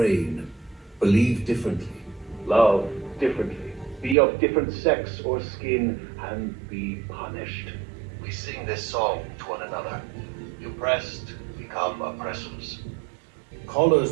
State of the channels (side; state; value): left; drops out; at 4.2 s